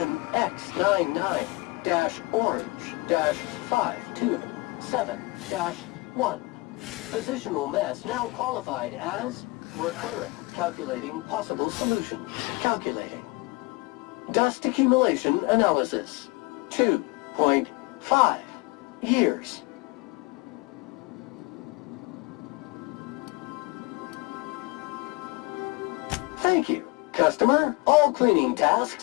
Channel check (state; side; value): quieter; right; 24.1 dB